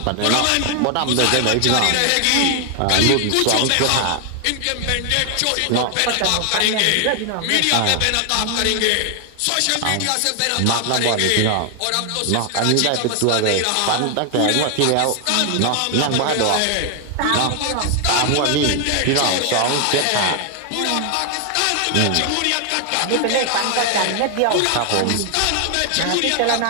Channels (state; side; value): different; both; correlation 0.00